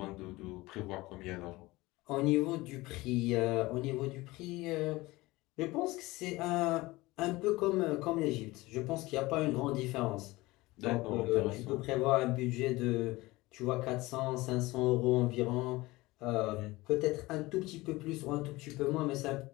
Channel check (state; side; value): quieter; right; 20.4 dB